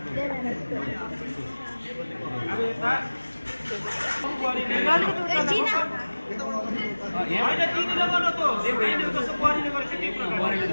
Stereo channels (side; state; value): both; inverted; correlation -1.00